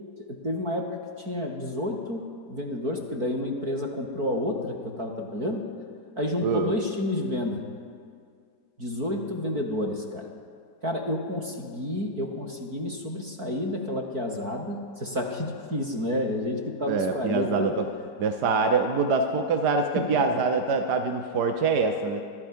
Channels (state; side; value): late; left; 4.5 ms